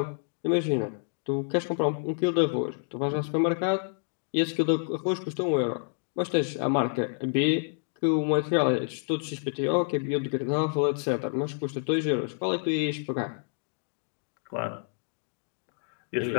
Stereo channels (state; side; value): silent; right; digital silence